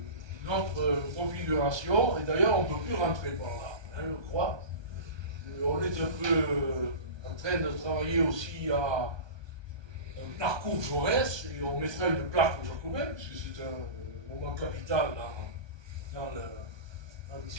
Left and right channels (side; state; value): left; late; 1.2 ms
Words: notre configuration, et d'ailleurs on ne peut plus rentrer par là, hein, je crois. On est un peu en train de travailler aussi à un parcours Jaurès, et on mettra une plaque aux Jacobins, puisque c'est un moment capital dans